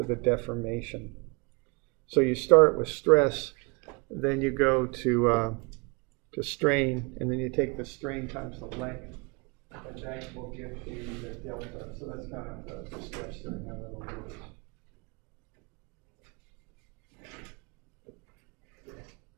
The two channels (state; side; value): quieter; left; 30.6 dB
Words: the deformation. So you start with stress, then you go to strain, and then you take the strain times the length, and that will give you the delta. So that's kind of the steps there and how that'll work.